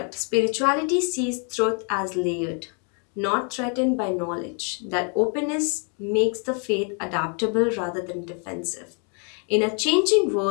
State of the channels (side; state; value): right; quieter; 39.6 dB